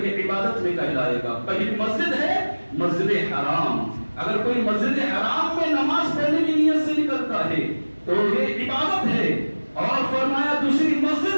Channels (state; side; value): inverted; both; correlation -1.00